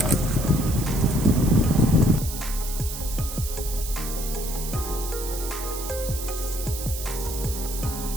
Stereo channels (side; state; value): right; noise; hiss, 8 dB below the sound